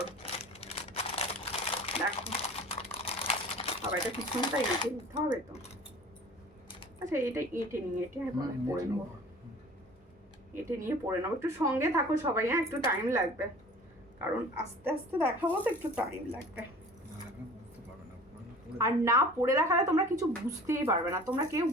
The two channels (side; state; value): both; normal; correlation 0.44